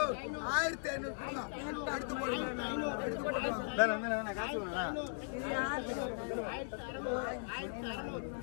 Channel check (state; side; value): silent; right; digital silence